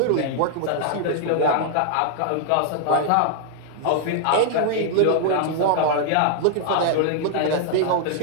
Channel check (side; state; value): both; different; correlation -0.01